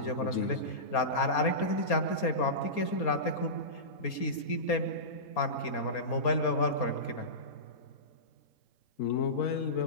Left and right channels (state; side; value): late; right; 4.3 ms